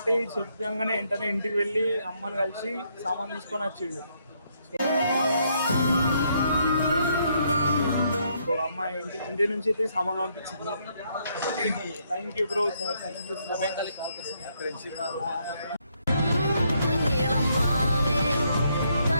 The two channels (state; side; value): inverted; both; correlation -0.73